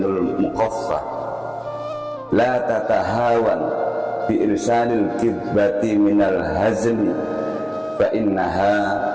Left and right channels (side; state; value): both; identical; correlation 1.00